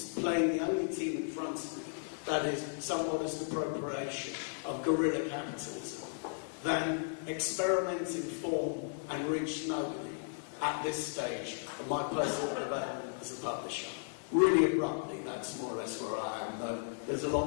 playing the only team in front of me that is some modest appropriation of guerrilla capitalism than experiment in form and reach nobody at this stage of my personal development as a publisher. Really abruptly, that's more or less where I am, though there's a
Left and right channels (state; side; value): silent; right; digital silence